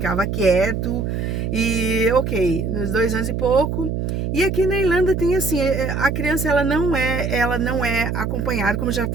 quieto. E ok, nos 2 anos e pouco. E aqui na Irlanda tem assim, a criança ela não é acompanhada, como eu já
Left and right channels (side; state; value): right; noise; hum, 2 dB below the sound